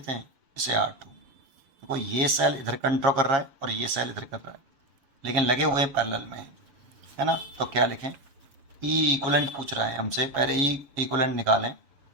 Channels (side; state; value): left; late; 7.1 ms